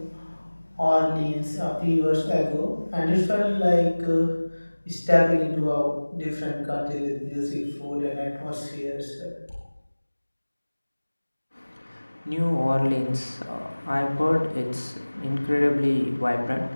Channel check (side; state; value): both; inverted; correlation -1.00